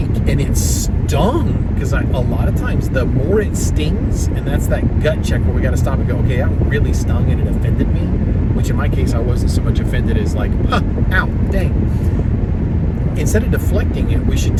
and it stung, because a lot of times the more it stings, and that's that gut check where we got to stop and go, okay, that really stung and it offended me, which in my case I wasn't so much offended as like, ow, dang. Instead of deflecting it, we should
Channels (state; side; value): identical; both; correlation 1.00